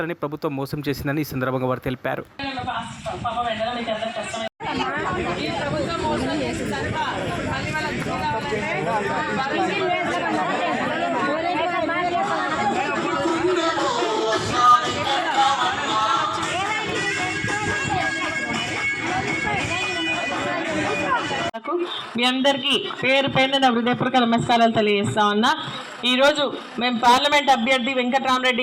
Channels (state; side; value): identical; both; correlation 1.00